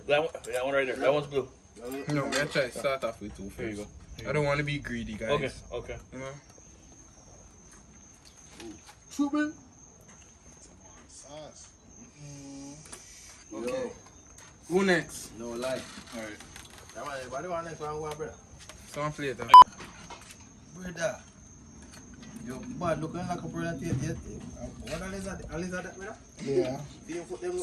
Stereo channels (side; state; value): both; identical; correlation 1.00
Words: That one right there. That one's blue. No, we're going to try to start off with two first. Here you go. I don't want to be greedy, guys. Okay. You know? Super. Okay. Who next? No lie. Alright. That one, everybody want next one, brother. Some flavor. Brother. Yo, bad looking like a brother. What a lizard that, brother? Yeah, Do you put them